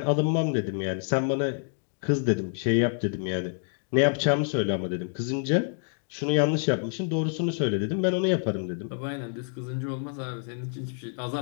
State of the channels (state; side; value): silent; right; 60 dB below the other